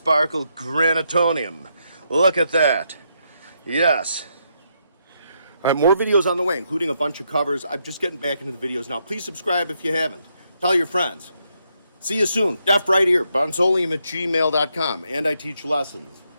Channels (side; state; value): both; inverted; correlation -0.78